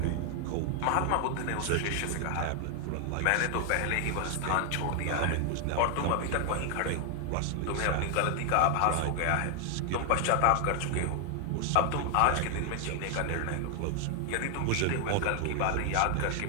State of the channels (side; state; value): both; different; correlation 0.00